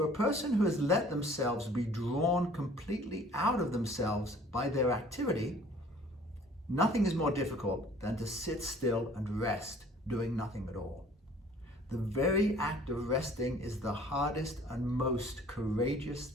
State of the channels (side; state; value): both; normal; correlation 0.52